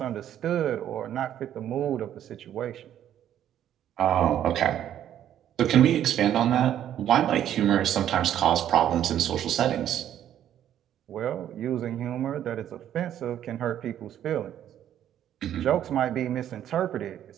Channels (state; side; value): quieter; left; 10.8 dB